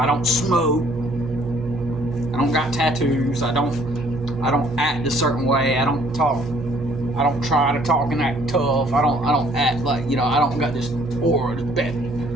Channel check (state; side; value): normal; both; correlation 0.61